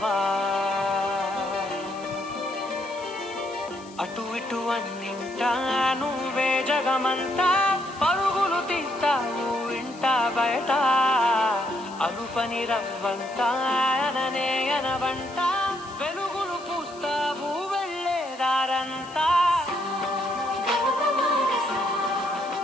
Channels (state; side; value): noise; left; hiss, 22 dB below the sound